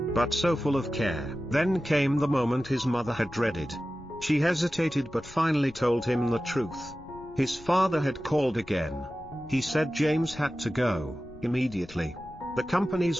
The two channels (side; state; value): left; noise; rumble, 20 dB below the sound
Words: but so full of care. Then came the moment his mother had dreaded. She hesitated but finally told him the truth. His father had called again. He said James had to go, immediately. The